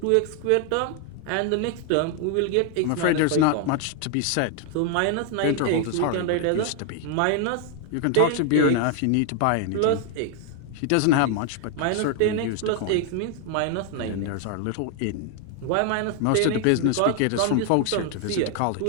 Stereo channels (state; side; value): different; both; correlation 0.00